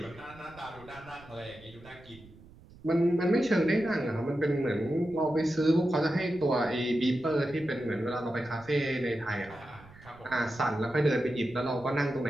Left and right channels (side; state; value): right; noise; rumble, 22 dB below the sound